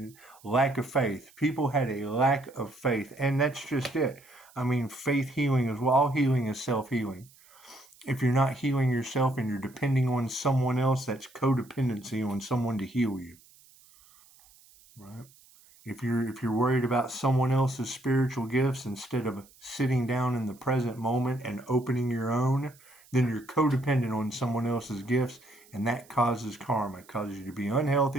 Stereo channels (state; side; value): noise; right; hiss, 27 dB below the sound